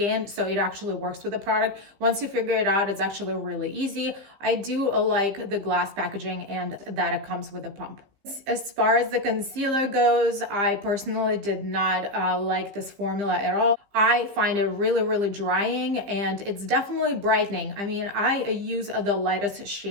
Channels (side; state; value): left; late; 15 ms